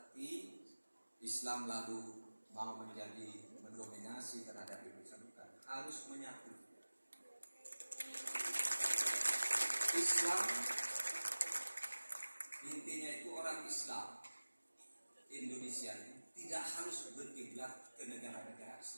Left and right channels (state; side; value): inverted; both; correlation -1.00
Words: Islam lalu mau menjadi mendominasi terhadap Indonesia, bukan. Harus menyatu. Islam intinya itu orang Islam. Indonesia tidak harus berkiblat ke negara-negara